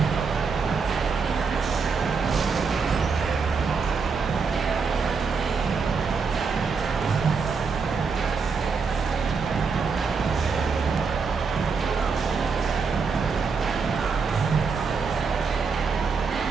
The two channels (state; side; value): quieter; left; 5.2 dB